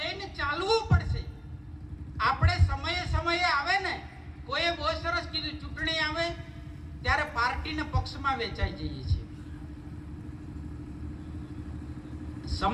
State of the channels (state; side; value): identical; both; correlation 1.00